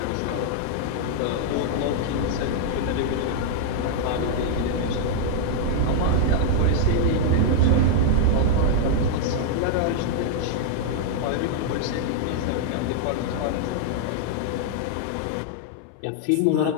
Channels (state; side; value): different; both; correlation -0.01